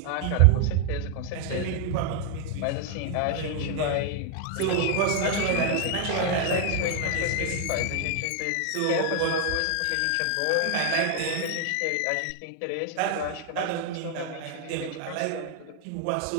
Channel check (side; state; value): both; different; correlation 0.00